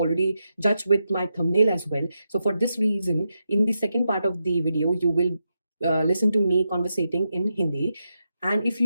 judged with my thumbnail as well. So for this reason, in the second part of the video, you will listen to me conversating in Hindi. And if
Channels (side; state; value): both; inverted; correlation -0.86